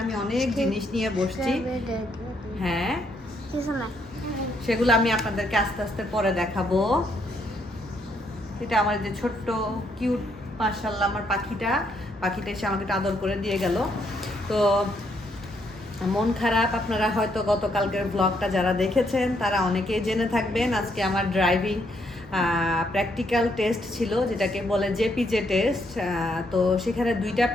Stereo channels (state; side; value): normal; both; correlation 0.73